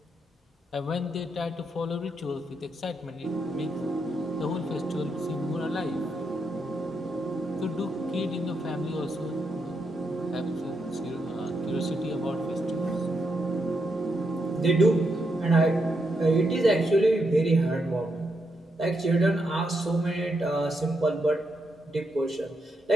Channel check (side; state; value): both; normal; correlation 0.81